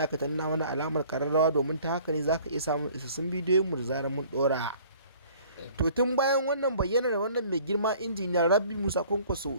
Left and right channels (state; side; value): inverted; both; correlation -0.53